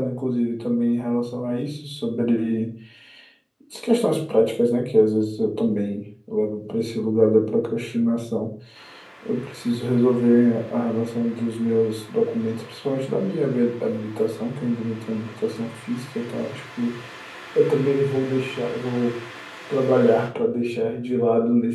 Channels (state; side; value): identical; both; correlation 1.00